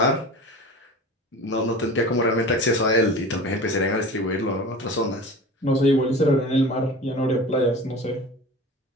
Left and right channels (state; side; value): normal; both; correlation 0.36